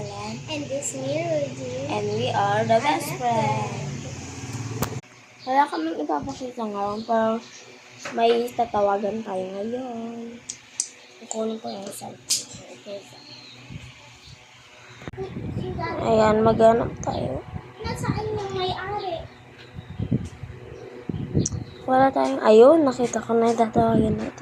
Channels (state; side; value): identical; both; correlation 1.00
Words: And this me, Rudy. And we are the best friends. Wala kaming ipapakita ngayon, pero may tatawagan tayo ngayon. Kukunin ko yung cellphone. Okay. Ayan, maghanap tayo. Nasaan yung may-ari? Wala tayong, ayun, nakita ko na yung tatawagan